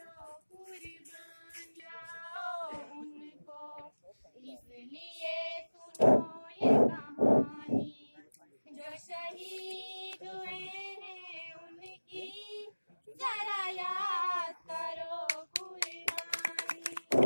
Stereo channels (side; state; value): both; inverted; correlation -1.00